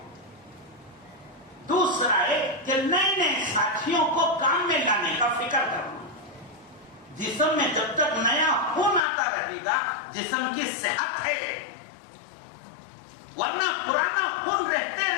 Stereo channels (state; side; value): drops out; right; at 9.0 s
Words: دوسرا ہے کہ نئے نئے ساتھیوں کو کام میں لانے کا فکر کرنا. جسم میں جب تک نیا خون آتا رہے گا جسم کی صحت ہے، ورنہ پرانا خون رہتے